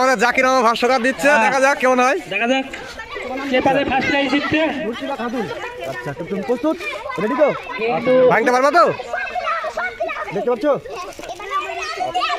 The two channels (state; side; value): identical; both; correlation 1.00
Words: জাকির আমার ভাষ্যকার দিচ্ছে, দেখা যাক কেমন হয়। দেখা যাক কে পারে ফার্স্ট প্রাইজ জিততে। আচ্ছা তুমি প্রস্তুত? রেডি তো? ভাঙতে পারবা তো? দেখতে পাচ্ছ?